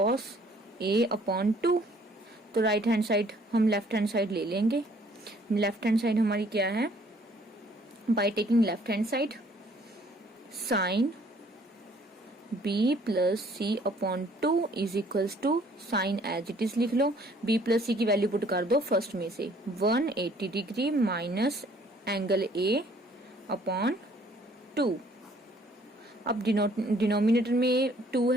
A upon 2। तो राइट हैंड साइड हम लेफ्ट हैंड साइड ले लेंगे। लेफ्ट हैंड साइड हमारी क्या है, by taking left hand side sine B plus C upon 2 is equals to sine as it is लिख लो, B plus C की वैल्यू पुट कर दो फर्स्ट में से 180 degree minus angle A upon 2। अब डिनोमिनेटर में 2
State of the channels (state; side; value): normal; both; correlation 0.60